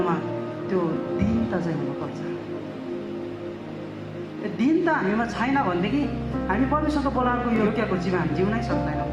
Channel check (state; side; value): identical; both; correlation 1.00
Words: त्यो दीनता चाहिँ हुनुपर्छ। दीनता हामीमा छैन भनेदेखि हामी परमेश्वरको बोलाएको योग्यको जीवन हामी जिउनै सक्दैनौँ।